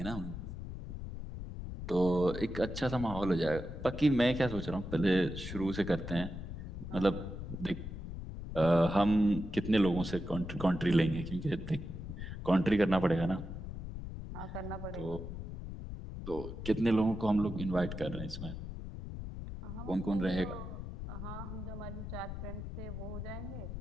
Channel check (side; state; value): left; noise; rumble, 8 dB below the sound